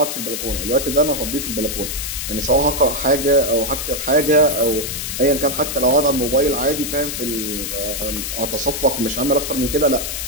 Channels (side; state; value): left; noise; hiss, 4 dB below the sound